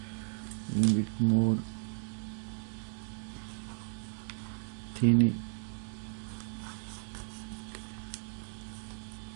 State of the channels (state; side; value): silent; left; 55 dB below the other